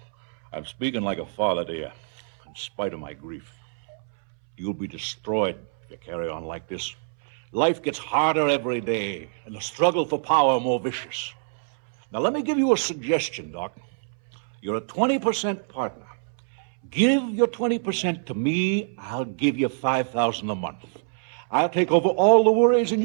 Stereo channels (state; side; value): silent; left; 62 dB below the other